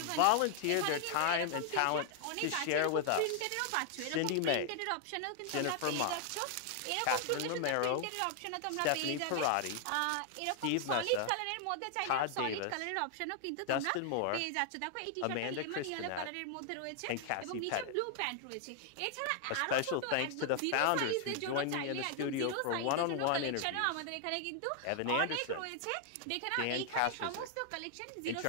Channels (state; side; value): different; both; correlation 0.00